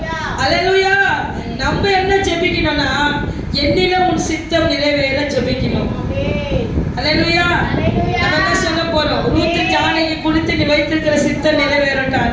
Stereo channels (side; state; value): both; identical; correlation 1.00